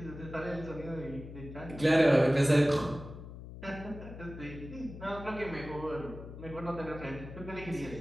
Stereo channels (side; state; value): left; noise; hum, 12 dB below the sound